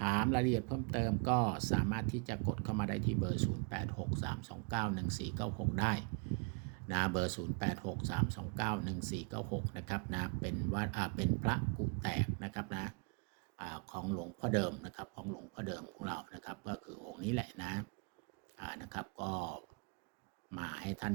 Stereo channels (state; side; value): quieter; left; 34.6 dB